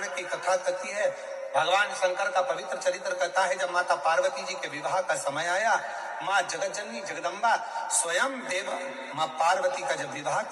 की कथा कहती है, भगवान शंकर का पवित्र चरित्र कहता है, जब माता पार्वती जी के विवाह का समय आया, माँ जगतजननी जगदम्बा स्वयं देव माँ पार्वती का जब विवाह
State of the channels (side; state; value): both; identical; correlation 1.00